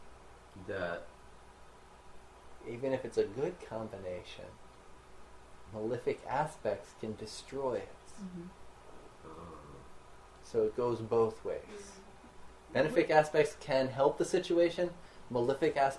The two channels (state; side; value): identical; both; correlation 1.00